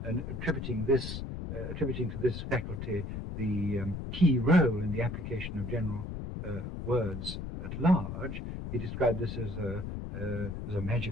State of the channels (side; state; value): left; noise; rumble, 6 dB below the sound